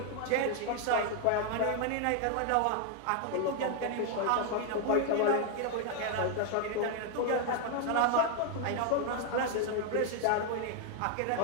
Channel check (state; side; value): different; both; correlation 0.00